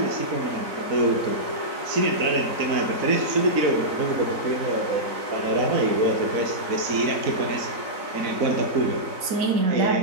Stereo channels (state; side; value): late; left; 4.0 ms